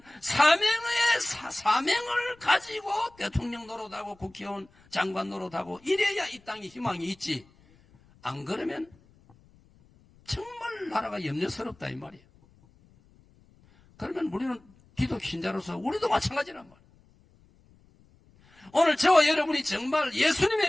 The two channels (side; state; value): left; noise; rumble, 29 dB below the sound